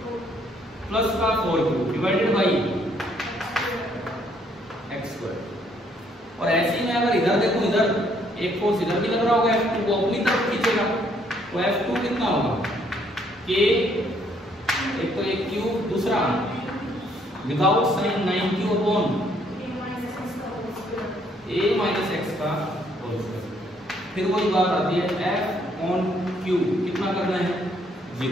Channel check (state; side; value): normal; both; correlation 0.67